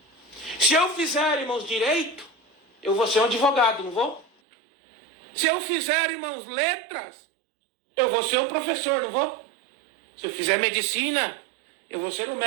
se eu fizer, irmãos, direito, eu vou ser um advogado, não vou? Se eu fizer, irmãos, letras, eu vou ser um professor, não vou? Se eu fizer medicina, eu vou ser um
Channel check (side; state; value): left; drops out; at 4.2 s